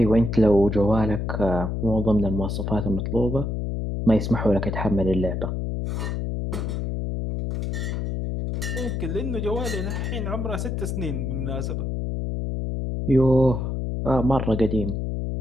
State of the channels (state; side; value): noise; left; hum, 2 dB below the sound